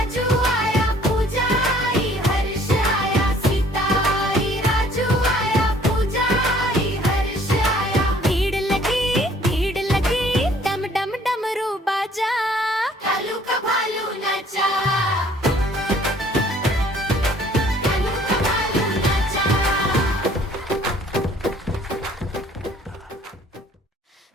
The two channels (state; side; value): normal; both; correlation 0.58